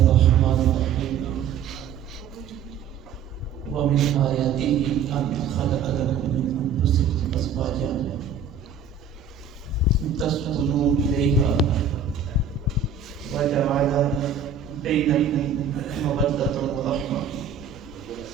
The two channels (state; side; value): quieter; left; 6.5 dB